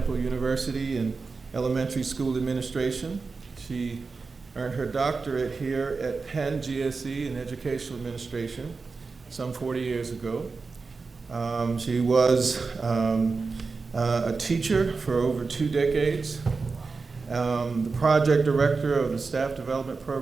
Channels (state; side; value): quieter; left; 4.4 dB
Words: University in elementary school administration. She earned her doctorate here at Penn GSE in educational administration some 40 years ago. She was a teacher for over 2 decades, the project director of the staff development